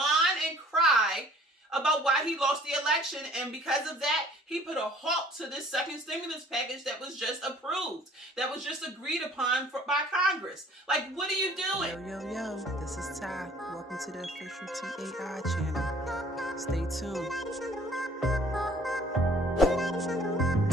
and cry about why he lost the election, and because of that, he put a halt to this second stimulus package that was just approved, that was just agreed upon by Congress. Like, what are you doing? Yo, this is Ty. Welcome to the official TAI channel. Stay tuned.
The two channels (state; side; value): normal; both; correlation 0.53